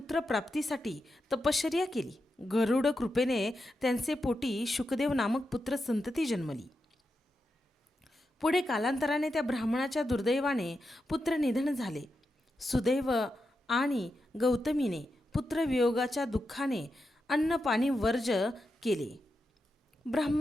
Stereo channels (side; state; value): both; normal; correlation 0.87